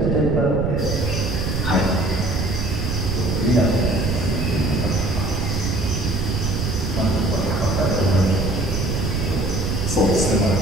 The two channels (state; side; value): noise; right; rumble, 1 dB below the sound